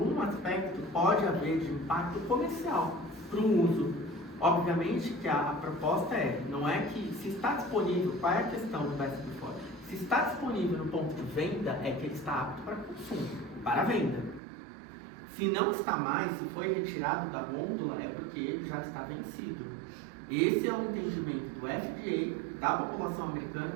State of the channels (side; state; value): left; drops out; at 14.4 s